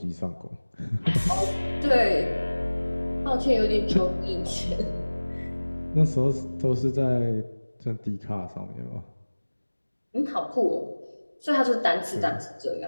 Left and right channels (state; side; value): inverted; both; correlation -1.00